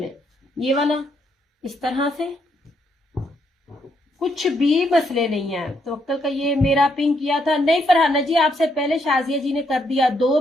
ये वाला इस तरह से, कुछ भी मसले नहीं है। तो अक्कल का ये मेरा पिंक किया था नहीं फरहाना जी, आपसे पहले शाजिया जी ने कर दिया। 2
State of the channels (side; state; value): both; normal; correlation 0.75